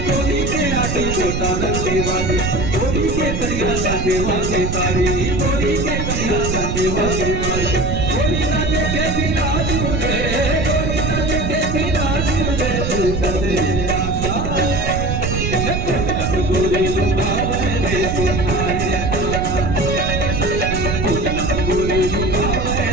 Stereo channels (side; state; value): right; noise; rumble, 2 dB below the sound